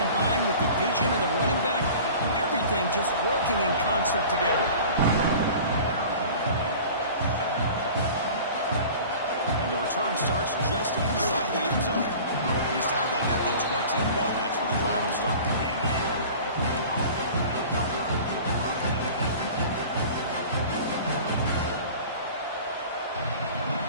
with the vision of the running back, everything just working in concert together. And the return starts just inside the end zone. He's tackled at the 21. That's where the drive will start.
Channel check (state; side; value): inverted; both; correlation -0.41